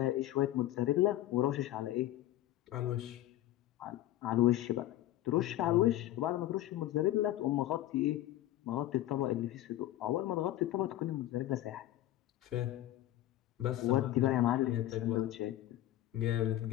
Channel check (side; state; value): right; quieter; 14.4 dB